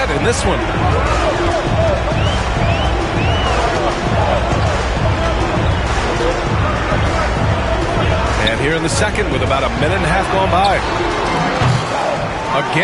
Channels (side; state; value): both; identical; correlation 1.00